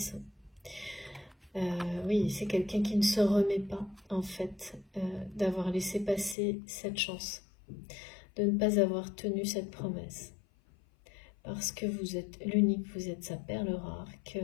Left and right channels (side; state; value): right; drops out; at 6.4 s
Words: Oui, c'est quelqu'un qui ne se remet pas, en fait, d'avoir laissé passer cette chance, de ne pas avoir tenu cette promesse. Parce que vous êtes l'unique, vous êtes sa perle rare, que